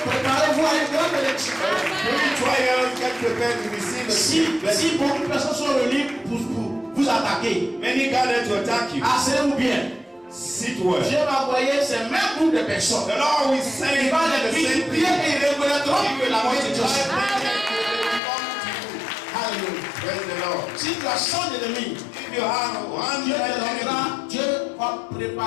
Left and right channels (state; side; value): drops out; right; at 18.2 s